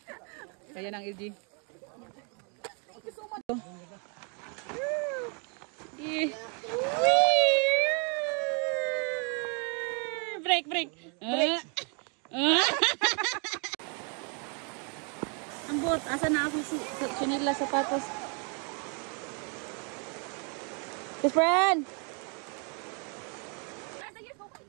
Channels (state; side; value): quieter; left; 37.4 dB